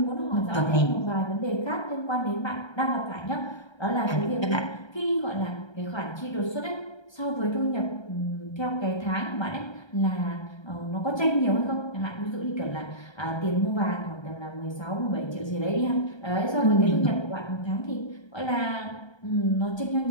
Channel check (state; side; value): late; right; 1.3 ms